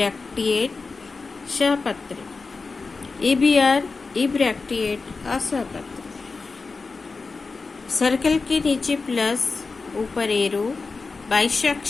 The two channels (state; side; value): quieter; right; 4.2 dB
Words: सहपत्र, EBR इब्रैक्टिएट असहपत्र। सर्कल के नीचे प्लस, ऊपर एरो,